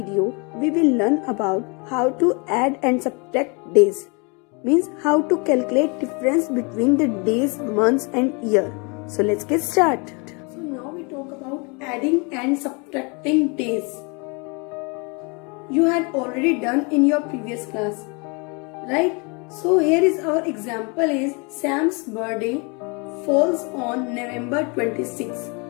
we will learn about how to add and subtract days. Means how to calculate difference between the days, months and year. So let's get started. So now we talk about adding and subtracting days. You had already done in your previous class, right? So here is our example is Sam's birthday falls on November 26.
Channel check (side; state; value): right; quieter; 31.6 dB